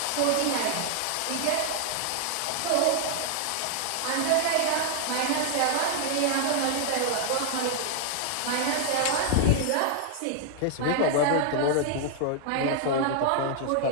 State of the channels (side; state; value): both; different; correlation 0.00